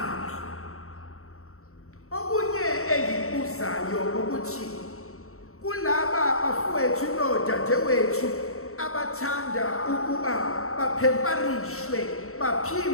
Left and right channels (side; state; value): right; late; 0.63 ms